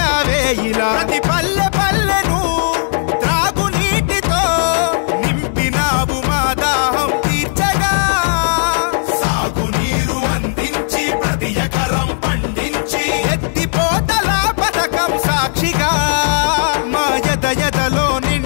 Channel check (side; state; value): right; silent; digital silence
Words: ప్రతి పల్లె పల్లెను త్రాగునీటితో నింపినావు మా దాహం తీర్చగా. సాగునీరు అందించి ప్రతి ఎకరం పండించి ఎత్తిపోతల పథకం సాక్షిగా మా ఎదలో